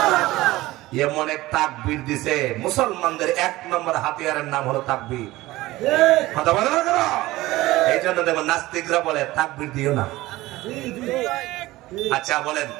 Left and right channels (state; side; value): quieter; left; 18.2 dB